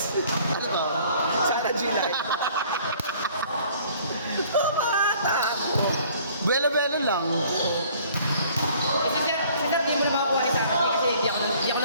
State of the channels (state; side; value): inverted; both; correlation -0.56